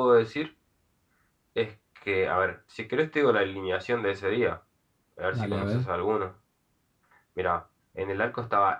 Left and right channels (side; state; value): both; identical; correlation 1.00